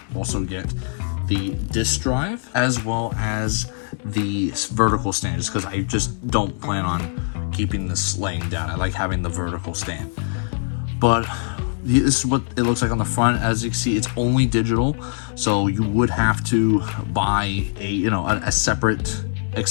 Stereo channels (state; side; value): silent; right; 64 dB below the other